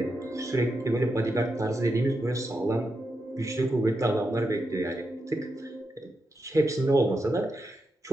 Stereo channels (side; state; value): both; normal; correlation 0.86